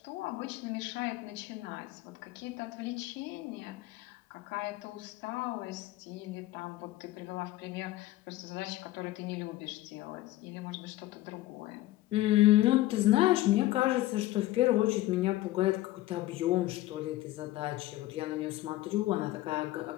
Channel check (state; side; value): quieter; right; 16.5 dB